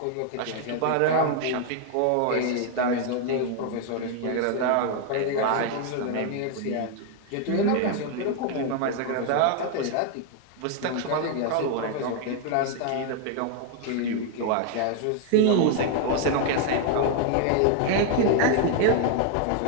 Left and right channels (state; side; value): different; both; correlation 0.00